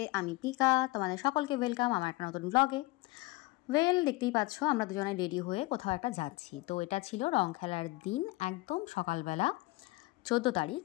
আমি পিকা, তোমাদের সকলকে ওয়েলকাম আমার একটা নতুন ব্লগে। দেখতেই পাচ্ছ আমরা দুজনে রেডি হয়ে কোথাও একটা যাচ্ছি। তো এটা ছিল রং খেলার দিন, একদম সকালবেলা 14 তারিখ।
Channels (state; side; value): quieter; right; 21.8 dB